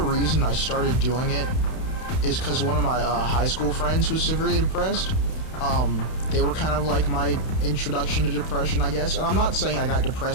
I started doing it is because one of my high school friends was severely depressed. They were kind of like my introduction to depression, I guess. And I'm not saying I got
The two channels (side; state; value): right; late; 31 ms